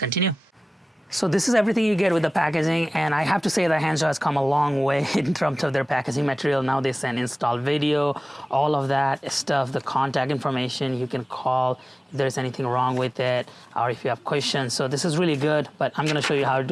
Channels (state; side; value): normal; both; correlation 0.97